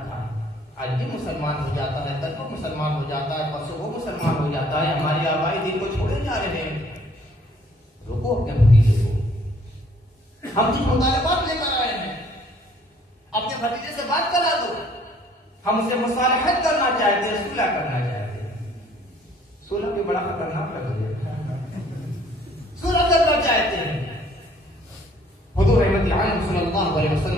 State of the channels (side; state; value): both; normal; correlation 0.60